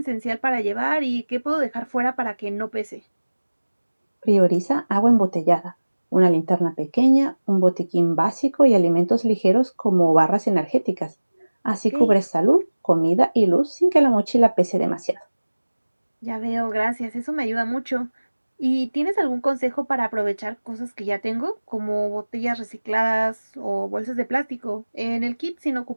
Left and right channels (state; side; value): inverted; both; correlation -1.00